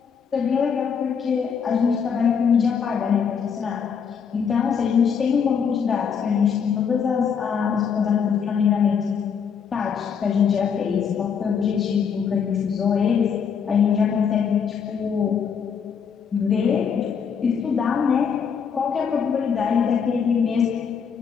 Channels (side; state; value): right; quieter; 6.8 dB